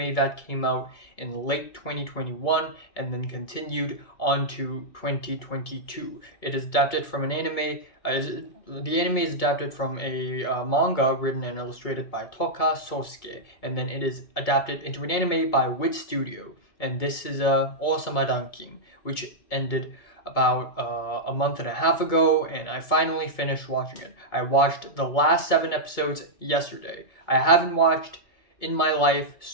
that came out in late 2021 and then continued on to 2022. It is adapted from an anime. The anime is adapted from a manga written and illustrated by Toka Sosuke, and then it is adapted into an anime by Wit Studio. And this is Osama Ranking, which ended about a month and a half ago, and I finally finished watching it. I watched the last 7 episodes yesterday. I haven't watched in my life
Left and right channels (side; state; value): right; late; 2.2 ms